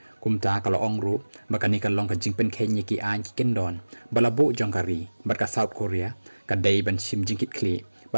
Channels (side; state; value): both; inverted; correlation -1.00